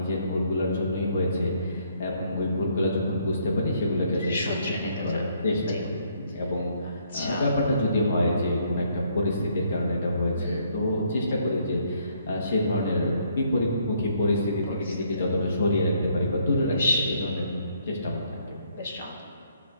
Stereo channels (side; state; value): both; inverted; correlation -0.68